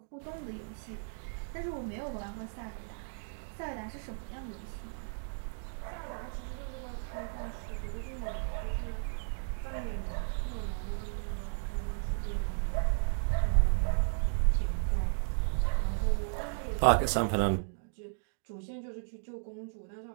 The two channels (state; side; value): silent; left; digital silence